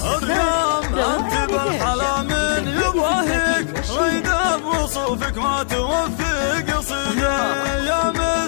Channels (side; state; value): right; silent; digital silence